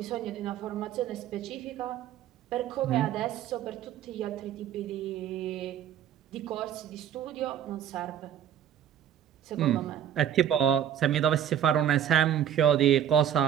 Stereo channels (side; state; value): left; quieter; 10.0 dB